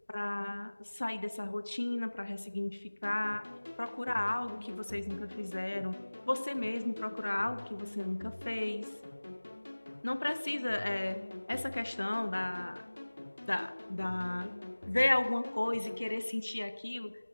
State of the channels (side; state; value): both; inverted; correlation -1.00